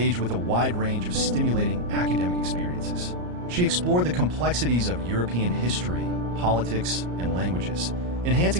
with a wide range of stimulating academic experiences. She explored the complexities of European history, politics, and languages,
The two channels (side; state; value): left; late; 34 ms